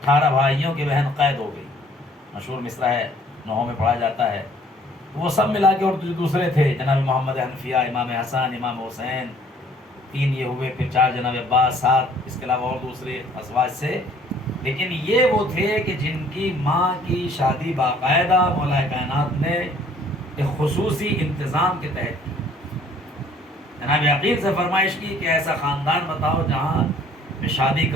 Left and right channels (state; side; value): normal; both; correlation 0.58